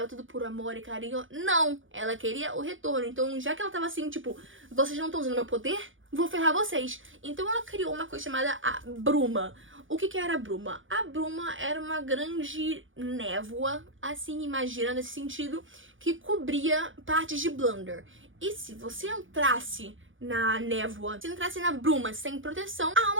tudo por amor e carinho. Não! Ela queria o retorno. Então, já que ela tava assim, tipo, vocês não estão usando meu poder, vou ferrar vocês. Então, ela criou uma coisa chamada a bruma. O que era a bruma? A bruma era uma grande névoa, assim, imagina, nesse sentido, que cobria partes de Blunder. E se você entrasse na névoa, se entrasse na bruma sem proteção, a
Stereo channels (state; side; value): late; left; 0.57 ms